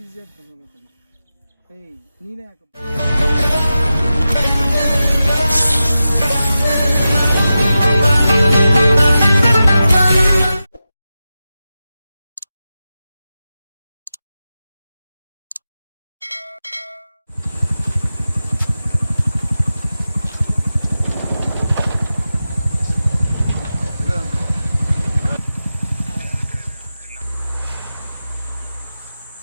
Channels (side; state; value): both; inverted; correlation -0.93